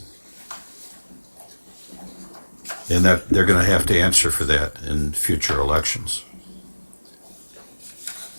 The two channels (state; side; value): inverted; both; correlation -1.00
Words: And that they're going to have to answer for that in future elections.